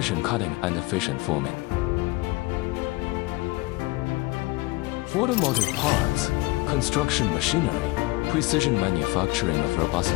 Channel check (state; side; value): quieter; right; 22.2 dB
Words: cutting and efficient forming. Automotive parts, construction machinery, precision manufacturing of robust